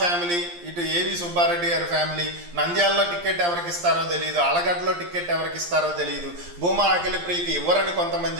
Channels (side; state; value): left; late; 11 ms